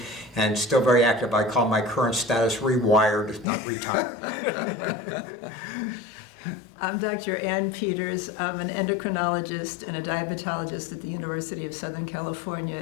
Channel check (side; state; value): right; drops out; at 3.5 s